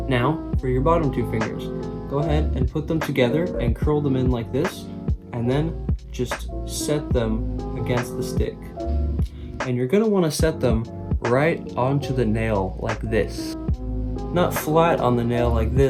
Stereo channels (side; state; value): both; identical; correlation 1.00